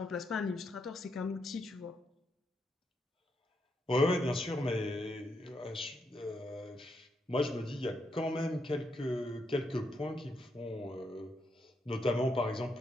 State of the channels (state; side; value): normal; both; correlation 0.80